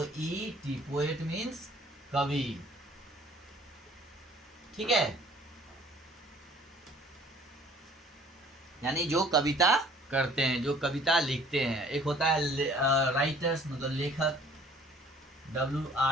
पोएट मीन्स कवि। ठीक है, यानी जो कविता करते हैं, जो कविता लिखते हैं। एक होता है राइटर्स मतलब लेखक,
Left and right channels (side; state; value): both; normal; correlation 0.54